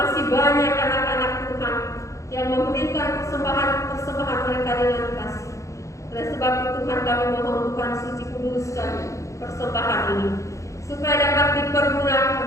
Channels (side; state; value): right; late; 0.15 ms